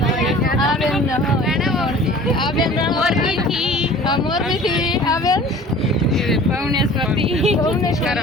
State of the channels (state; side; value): normal; both; correlation 0.45